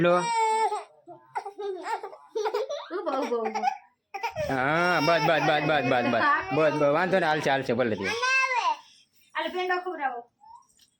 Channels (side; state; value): both; identical; correlation 1.00